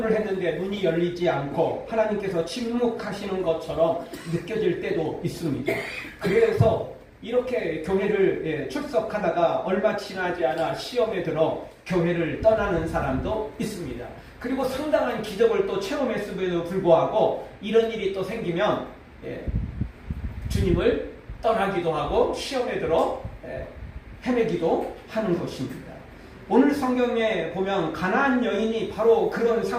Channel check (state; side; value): identical; both; correlation 1.00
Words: 했는데 문이 열리지 않고 하나님께서 침묵하시는 것처럼 느껴질 때도 있습니다. 그래서 이렇게 교회를 출석하다가 얼마 지나지 않아 시험에 들어 교회를 떠나는 사람도 있습니다. 그리고 상당한 기적을 또 체험했음에도 불구하고 이런 일이 또 생기면 주님을 떠나기도 하고 시험에 들어 헤매기도 하는 것입니다. 오늘 성경에 보면 가나안 여인이 바로 그런